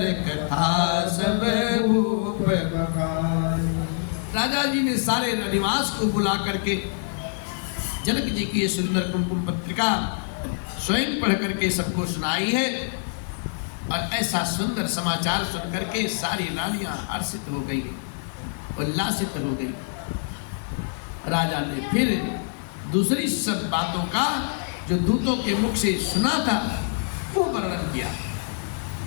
कथा सब भूप बखानी। राजा जी ने सारे निवास को बुला करके जनक जी की ये सुंदर कुमकुम पत्रिका स्वयं पढ़ करके सबको सुनाई है। और ऐसा सुंदर समाचार सुन करके सारी रानियां हर्षित हो गई, उल्लासित हो गई। राजा ने फिर दूसरी सब बातों का जो दूतों के मुख से सुना था वो वर्णन किया।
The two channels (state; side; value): silent; right; 62 dB below the other